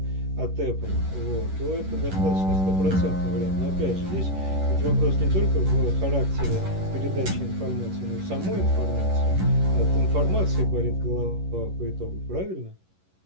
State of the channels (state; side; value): late; left; 11 ms